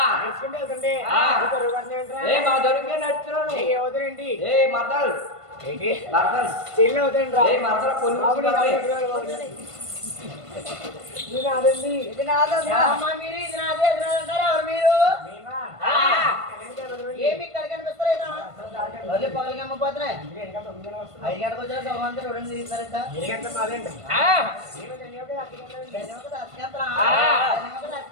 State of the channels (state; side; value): late; left; 1.5 ms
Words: నడుచుకుంటూ వెళ్తుంటే ఆ. నీకు రుగాన్ని ఏంట్రా? ఏ మా దొరికే నడుచున్నాను నీకు ఎవరుండి ఏ మర్దల్ ఏంటి మర్దల్ చెల్లి అవుతాయండి ఏ మర్దల పొల్లు నేను అదండి ఇది నాదమ్మా అమ్మా మీరు ఇది నాదే ఇది నాదే అంటారా ఎవరు మీరు ఆ. ఏమి ఇక్కడ కనిపిస్తలేదు అదే పగలకి అమ్మపోతున్నాయి 5 గంటలకు వచ్చారు సోమంతా 2 తీస్తారంట ఆ.